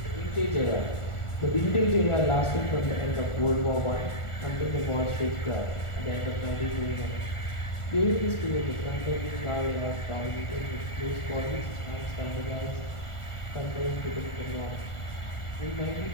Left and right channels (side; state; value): right; late; 1.4 ms